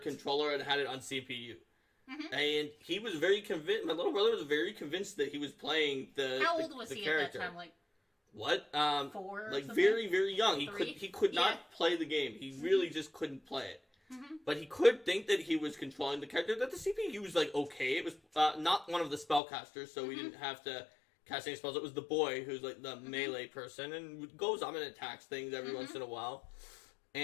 controller and had it on CPU. And he was very convinced, my little brother was very convinced that he was playing the How old was the he character. at that time? Like what? 4 or like something? very, very young. Three? He could not play the game. He really just couldn't play it. But he could think that he was controlling the character. That the CPU was like okay. It was not one of the spellcasters, so we didn't have to cast any spells. It was the boy who's like the melee person and goes up and attacks things every once in a while.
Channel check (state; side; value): drops out; right; at 19.4 s